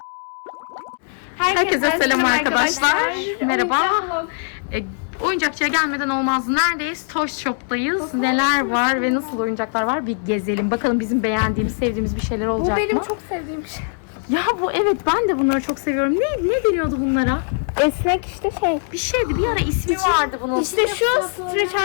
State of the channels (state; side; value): silent; right; 63 dB below the other